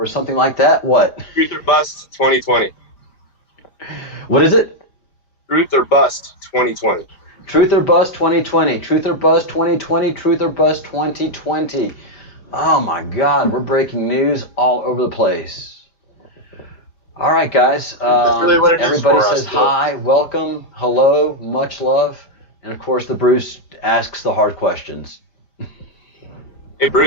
something like that? What? Truth or Bust 2020. What is it? Truth or Bust 2020. Truth or Bust 2020. Truth or Bust 2020. Truth or Bust 2020. Oh my God, we're breaking news all over the place. All right, guys. That's really what it everybody is for says us, hi, welcome, hello, much love. And of course, the Bruce asks the hard questions. Hey,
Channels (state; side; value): late; right; 4.9 ms